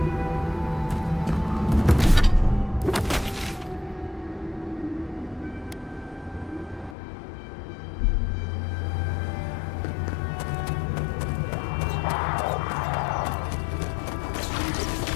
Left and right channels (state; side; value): drops out; right; at 7.0 s